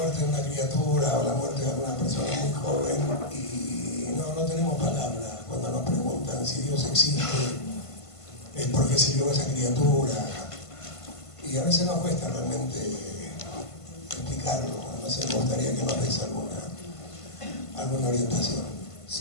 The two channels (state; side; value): late; right; 1.5 ms